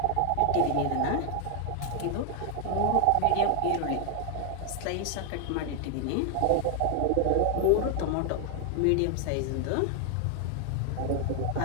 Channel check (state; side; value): different; both; correlation 0.00